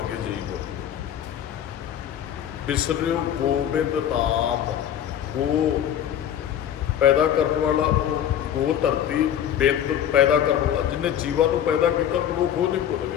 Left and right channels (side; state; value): right; quieter; 10.1 dB